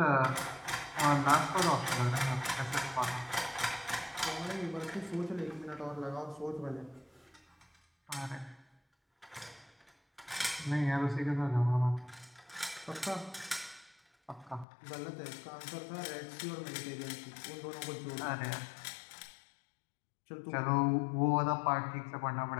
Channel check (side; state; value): right; drops out; at 14.7 s